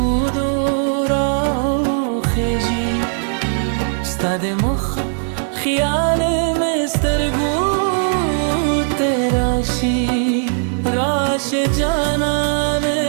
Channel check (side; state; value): left; silent; digital silence